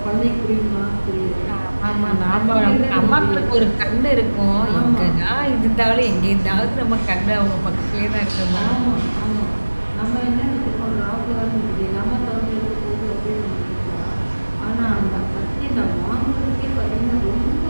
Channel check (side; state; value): both; inverted; correlation -1.00